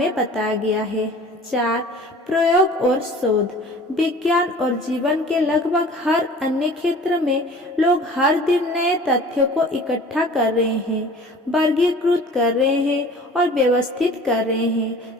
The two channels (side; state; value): both; normal; correlation 0.45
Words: बताया गया है। 4, प्रयोग और शोध। विज्ञान और जीवन के लगभग हर अन्य क्षेत्र में लोग हर दिन नए तथ्यों को इकट्ठा कर रहे हैं, वर्गीकृत कर रहे हैं और व्यवस्थित कर रहे